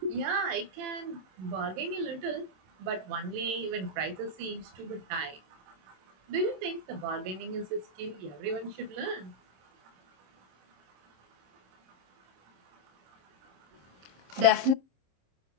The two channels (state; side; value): late; left; 27 ms